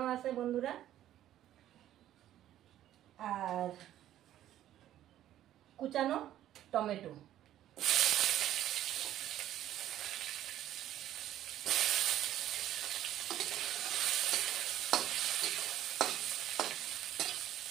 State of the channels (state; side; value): quieter; left; 12.5 dB